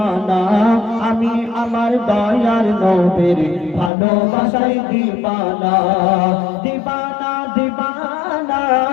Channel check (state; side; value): drops out; right; at 3.9 s